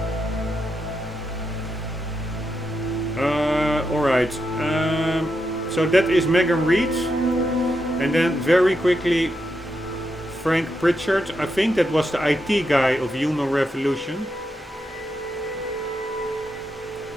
Alright, so that is Megan Reed. And then very quickly, Frank Pritchard. I think that was the IT guy of Human Revolution.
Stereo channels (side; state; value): both; normal; correlation 0.84